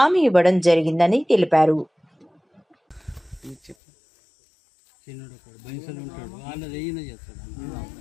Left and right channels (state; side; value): drops out; right; at 3.8 s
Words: ఇవ్వడం జరిగిందని తెలిపారు.